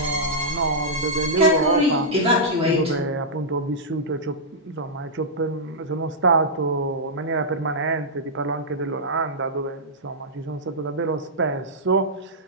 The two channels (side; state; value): both; normal; correlation -0.11